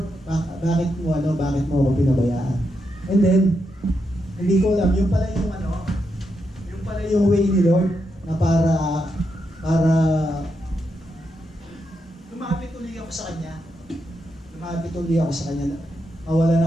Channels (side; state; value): both; normal; correlation 0.83